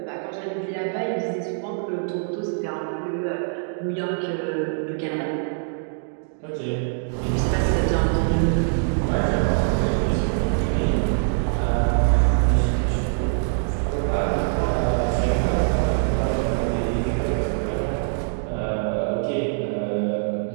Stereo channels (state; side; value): silent; left; digital silence